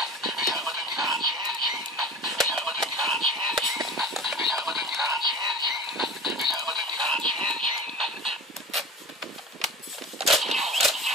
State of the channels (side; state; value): both; normal; correlation 0.36